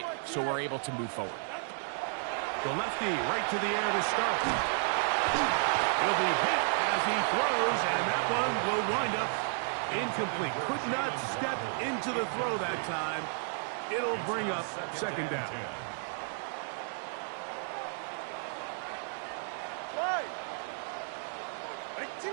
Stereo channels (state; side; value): silent; left; 56 dB below the other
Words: so we're able to move forward. The lefty right to the air to start. He'll be hit as he throws, and that one will wind up incomplete. Could not step into the throw that time. It'll bring up 2nd down.